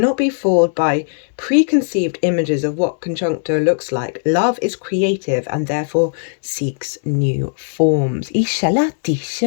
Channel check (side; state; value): right; silent; digital silence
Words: be fooled by preconceived images of what conjuncto looks like. Love is creative and therefore seeks new forms.